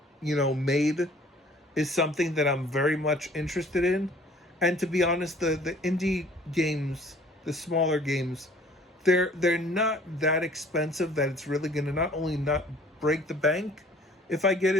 made is something that I'm very much interested in. And to be honest, the indie games, the smaller games, they're not that expensive that it's really going to not only not break the bank if I get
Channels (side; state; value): both; normal; correlation 0.54